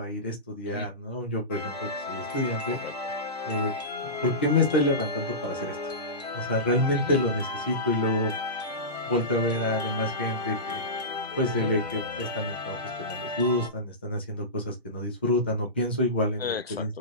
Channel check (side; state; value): both; normal; correlation -0.19